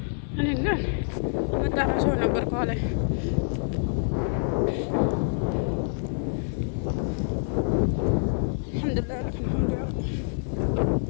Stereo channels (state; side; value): silent; right; digital silence